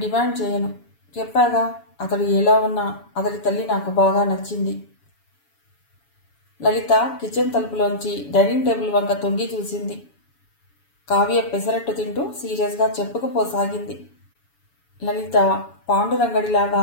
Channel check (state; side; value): late; right; 7.1 ms